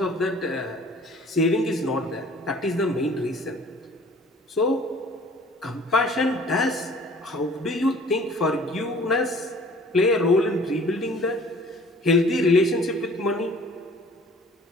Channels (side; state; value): both; normal; correlation 0.51